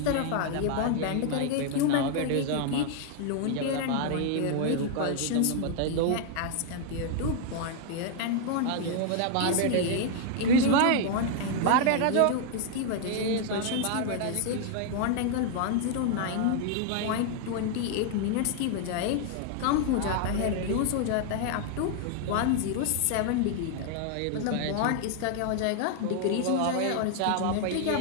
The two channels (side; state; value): both; different; correlation 0.00